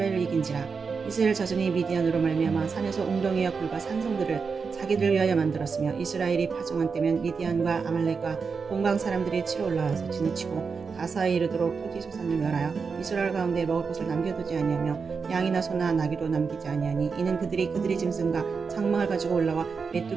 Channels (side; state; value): left; quieter; 5.3 dB